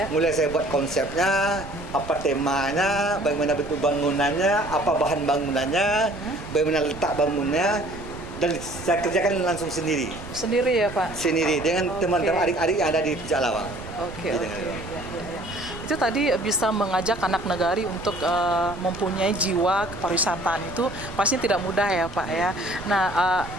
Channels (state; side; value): noise; right; rumble, 14 dB below the sound